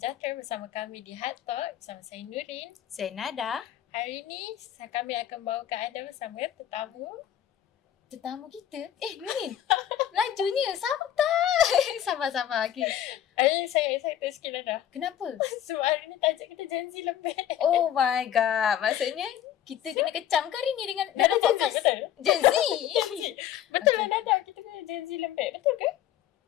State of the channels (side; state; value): right; quieter; 10.9 dB